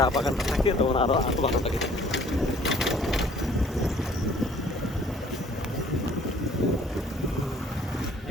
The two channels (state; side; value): normal; both; correlation 0.56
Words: বাগানটা থাকে তখন আরো ভালো লাগে।